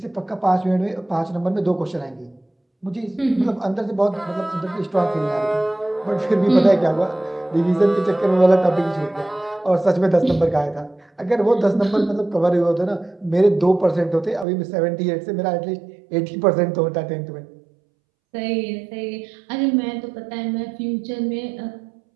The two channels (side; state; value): left; drops out; at 14.5 s